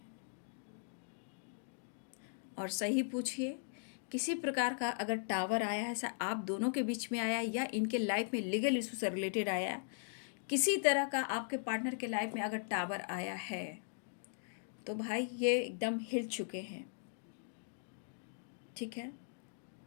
और सही पूछिए, किसी प्रकार का अगर टावर आया है, ऐसा आप दोनों के बीच में आया या इनके लाइफ में लीगल इशू से रिलेटेड आया, किसी तरह का आपके पार्टनर के लाइफ में अगर टावर आया है तो भाई ये एकदम हिल चुके हैं। ठीक है,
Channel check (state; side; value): silent; right; digital silence